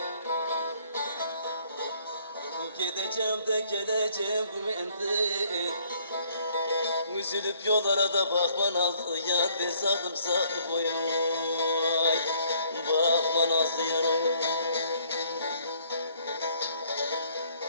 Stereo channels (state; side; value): inverted; both; correlation -0.63